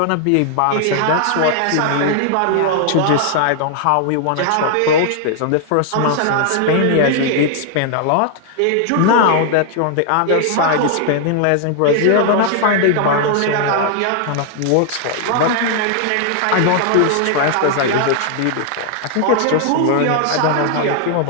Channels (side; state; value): both; different; correlation 0.00